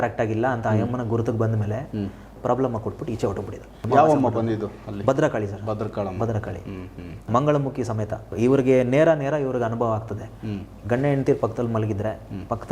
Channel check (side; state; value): both; identical; correlation 1.00